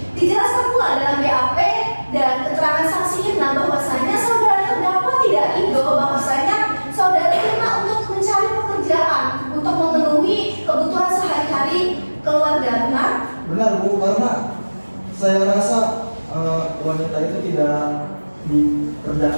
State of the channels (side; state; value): both; inverted; correlation -1.00